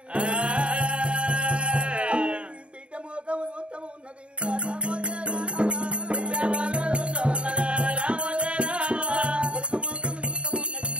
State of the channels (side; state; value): left; late; 0.058 ms